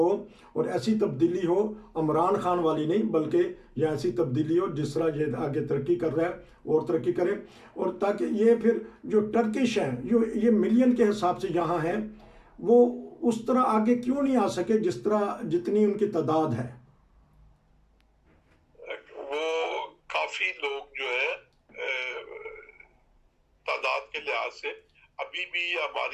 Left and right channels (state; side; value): identical; both; correlation 1.00